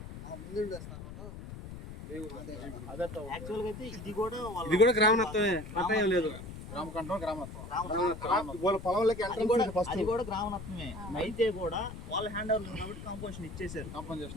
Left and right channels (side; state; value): left; noise; rumble, 11 dB below the sound